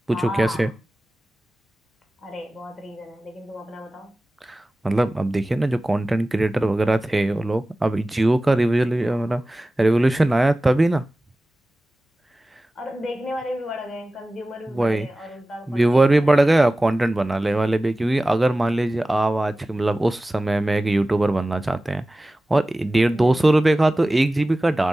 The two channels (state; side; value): normal; both; correlation 0.97